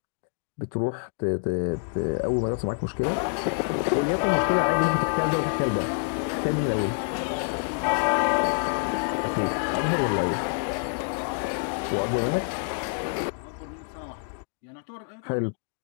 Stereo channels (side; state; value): right; silent; digital silence